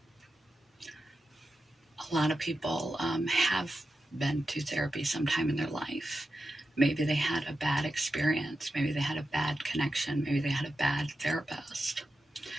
A lot of people have been to therapy sometime in their life. Maybe they had a bad experience. Maybe they had a bad connection. Maybe they had a bad therapist.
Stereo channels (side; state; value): both; normal; correlation 0.90